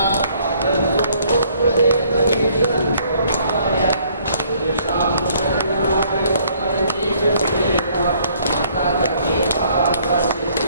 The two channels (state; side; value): inverted; both; correlation -0.63